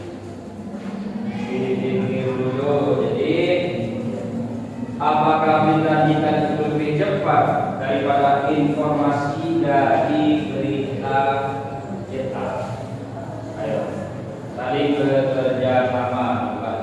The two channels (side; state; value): both; identical; correlation 1.00